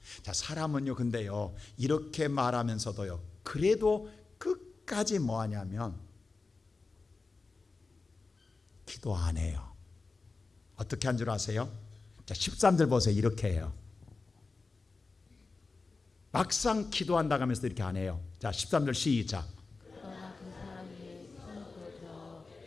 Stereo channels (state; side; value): quieter; right; 4.0 dB